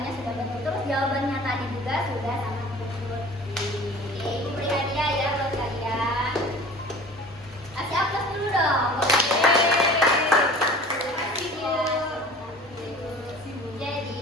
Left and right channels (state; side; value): normal; both; correlation 0.43